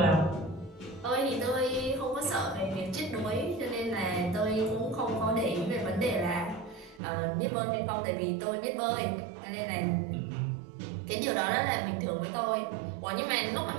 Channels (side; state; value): left; drops out; at 7.0 s